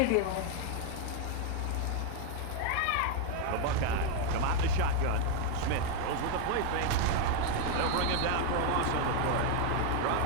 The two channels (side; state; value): both; different; correlation 0.01